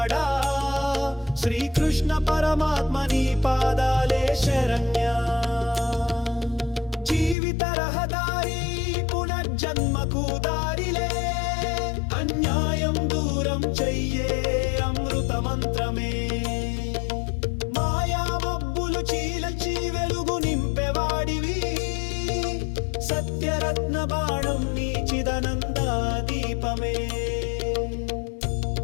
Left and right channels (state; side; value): drops out; right; at 7.4 s